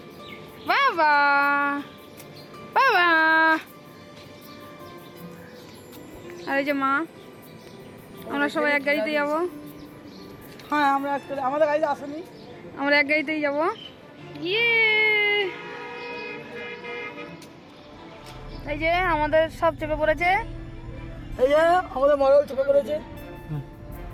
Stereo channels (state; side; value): identical; both; correlation 1.00